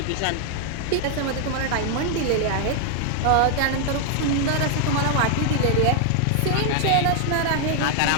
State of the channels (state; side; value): different; both; correlation 0.00